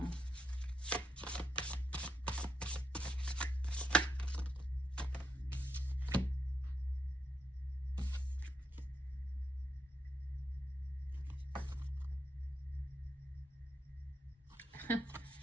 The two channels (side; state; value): both; normal; correlation 0.81